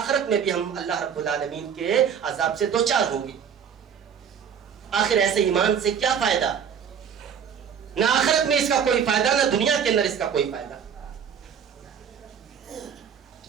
میں بھی ہم اللہ رب العالمین کے عذاب سے دوچار ہوں گے۔ آخر ایسے ایمان سے کیا فائدہ؟ نہ آخرت میں اس کا کوئی فائدہ، نہ دنیا کے اندر اس کا کوئی فائدہ۔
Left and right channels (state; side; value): quieter; left; 7.7 dB